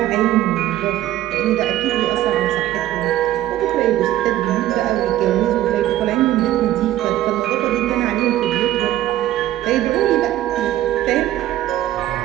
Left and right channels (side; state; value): left; quieter; 14.0 dB